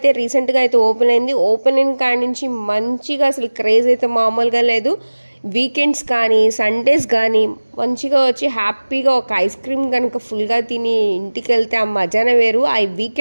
రీసెంట్గా అయితే ఓపెన్ అయింది. ఓపెనింగ్ కాడి నుంచి మంచిగా అసలు క్రేజ్ అయితే మామూలుగా లేదు. వీకెండ్స్ కానీ సండేస్ కానీ మంచిగా వచ్చి హ్యాపీగా ఒక ఐస్ క్రీమ్ కనుక ఫుల్గా తిని ఇంటికి వెళ్తే ఆ మజానే వేరు. ఆ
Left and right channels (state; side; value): inverted; both; correlation -1.00